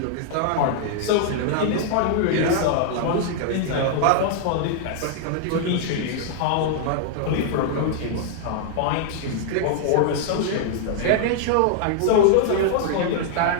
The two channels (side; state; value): both; different; correlation -0.01